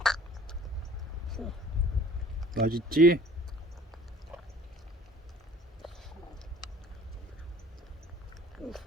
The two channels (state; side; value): normal; both; correlation 0.50